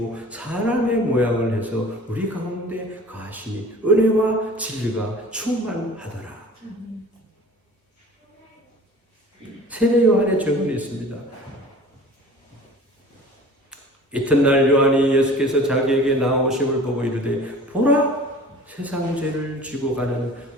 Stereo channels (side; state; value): both; normal; correlation 0.43